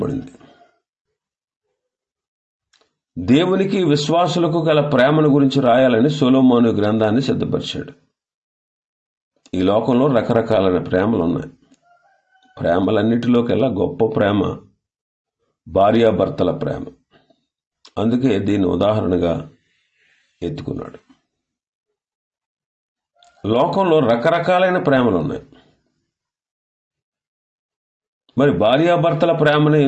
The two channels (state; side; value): identical; both; correlation 1.00